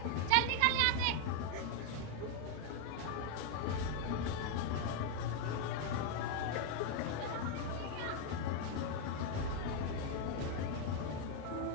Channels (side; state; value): both; different; correlation 0.01